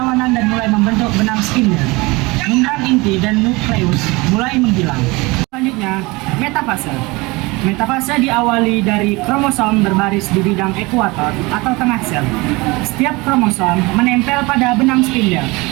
dan mulai membentuk benang spindle. Membran inti dan nukleus mulai menghilang. Selanjutnya, metafase. Metafase diawali dari kromosom berbaris di bidang ekuator atau tengah sel. Setiap kromosom menempel pada benang spindel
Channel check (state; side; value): quieter; left; 23.9 dB